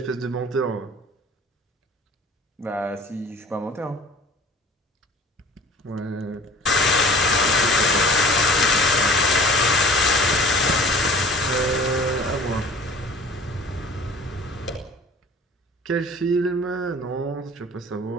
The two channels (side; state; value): both; normal; correlation 0.47